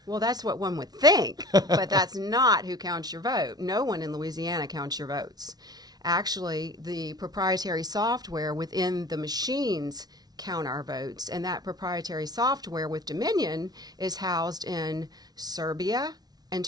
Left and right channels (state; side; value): late; left; 0.19 ms